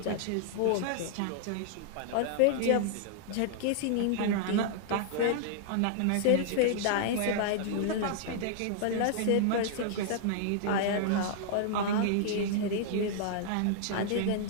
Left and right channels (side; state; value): both; different; correlation -0.01